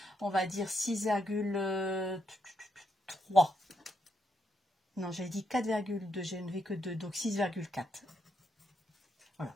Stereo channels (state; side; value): normal; both; correlation 0.79